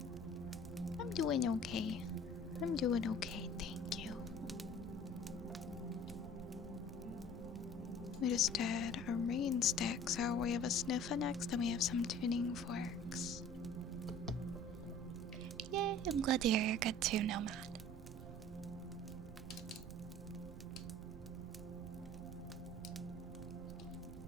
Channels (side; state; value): right; noise; rumble, 13 dB below the sound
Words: I'm doing okay. I'm doing okay, thank you. We just did a rain stick, so we have a sniffer next, and we have some tuning forks. Yay, I'm glad to hear you're good too, Nomad.